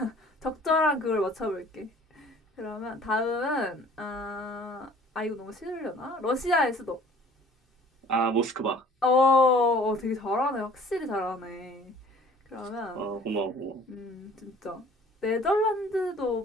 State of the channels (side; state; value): both; normal; correlation 0.52